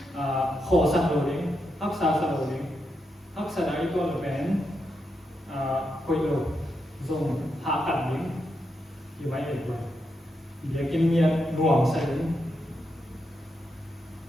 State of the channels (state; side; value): normal; both; correlation 0.84